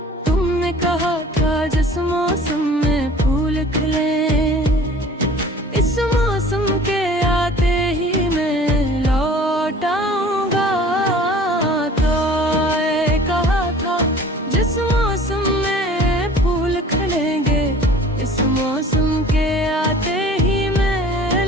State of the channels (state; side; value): normal; both; correlation 0.47